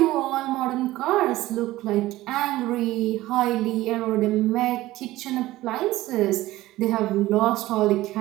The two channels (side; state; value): left; quieter; 16.8 dB